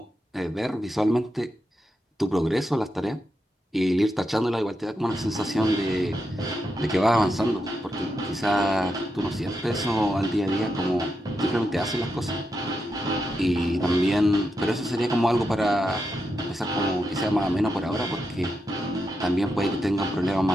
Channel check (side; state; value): both; normal; correlation 0.85